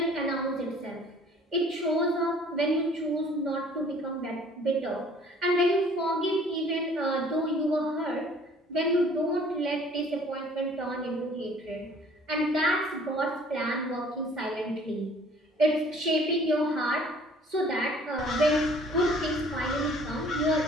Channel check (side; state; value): both; normal; correlation 0.54